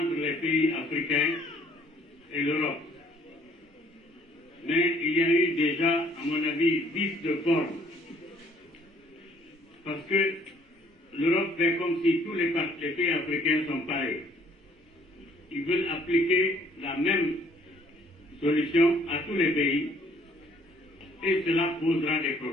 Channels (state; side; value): normal; both; correlation 0.60